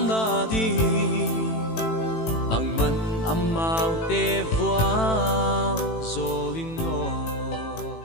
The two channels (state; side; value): late; right; 18 ms